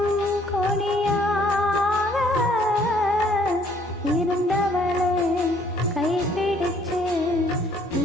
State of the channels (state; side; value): normal; both; correlation 0.62